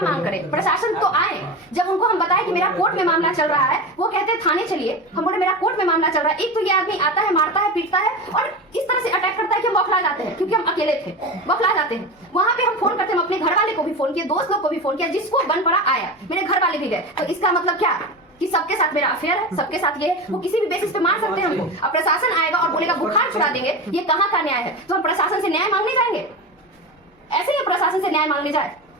मांग करें? प्रशासन तो आए, जब उनको हम बताए कि मेरा कोर्ट में मामला चल रहा है, वो कहते हैं थाने चलिए। हम बोले मेरा कोर्ट में मामला चल रहा है। एक तो ये आदमी आता है, मारता है, पीटता है और इस तरह से अटैक करता है कि हम बौखला जाते हैं, क्योंकि हम अकेले थे, बौखला जाते हैं। वहां पे हम फोन करते हैं, अपने घर वाले को भी फोन किया, दोस्त लोग को भी फोन किया, जिसको बन पड़ा आया, मेरे घर वाले भी गए। तो इसका मतलब क्या कि सबके साथ मेरा अफेयर है, सबके साथ ये वो किसी भी बेसिस पे मार सकते हैं हमको। अब प्रशासन आएगा और बोलेगा बुखार छुड़ा देंगे, ये कहाँ का न्याय है? तो हम प्रशासन से न्याय मांगने जाएंगे? ऐसे ही प्रशासन से न्याय मांगने जाए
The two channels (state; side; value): normal; both; correlation 0.25